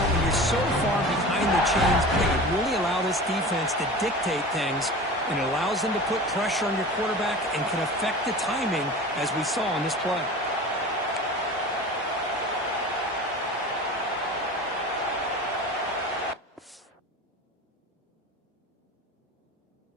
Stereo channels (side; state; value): both; normal; correlation 0.35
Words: you're so far behind the chains, they could really allow this defense to dictate things, and it allows them to put pressure on your quarterback and can affect the timing, as we saw on this play.